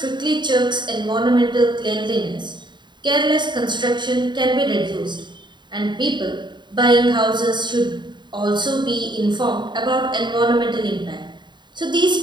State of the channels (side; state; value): left; late; 0.22 ms